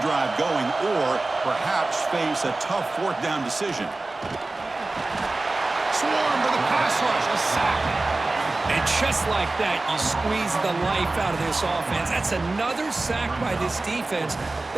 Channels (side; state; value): left; quieter; 3.1 dB